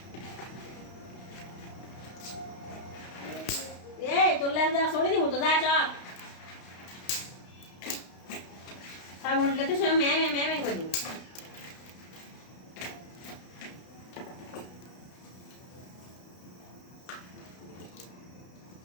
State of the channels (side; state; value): right; late; 32 ms